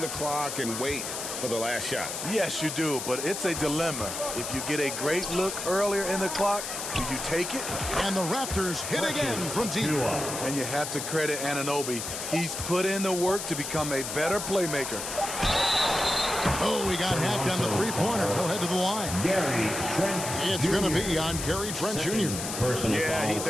clock and wait for the last shot. Yes, you do, but it's a dilemma. If you get a great look earlier in the clock, do you take it? And the Raptors hit again from deep. And you have to credit Anunoby. He's put in the work to become a better playmaker. Oh, he got hacked on the three-pointer. He'll head to the line. Gary Trent It's going to be on Gary Trent Jr. Yeah,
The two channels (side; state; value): left; noise; hiss, 5 dB below the sound